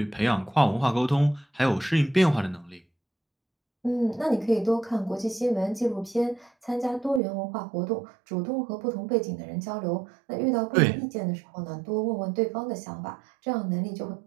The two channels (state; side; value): drops out; left; at 7.2 s